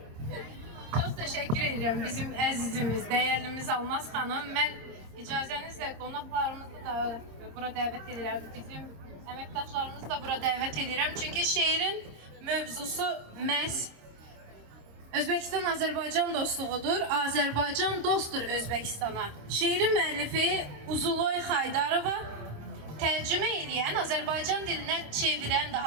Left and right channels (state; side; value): late; left; 26 ms